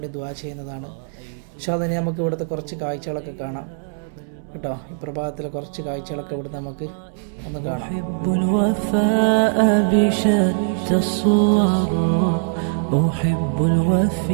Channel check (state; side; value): silent; left; digital silence